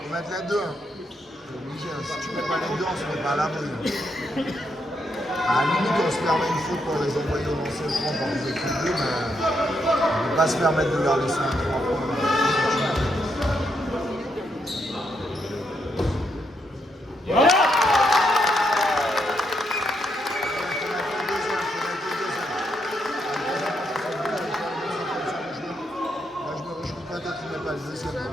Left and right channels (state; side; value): normal; both; correlation 0.79